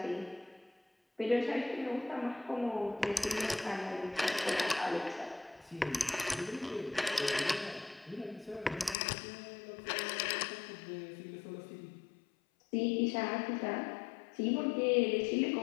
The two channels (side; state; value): right; drops out; at 9.0 s